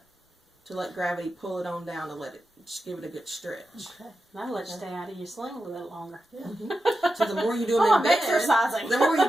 let gravity pull it on down to let it just give it a good stretch. Okay. That'll let you stay out of your sling a little bit longer. So the more you do them Oh, in I'm bed, exercising. the more you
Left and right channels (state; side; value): normal; both; correlation 0.90